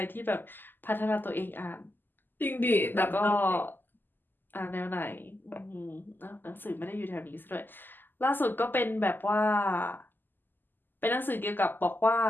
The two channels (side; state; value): right; late; 0.091 ms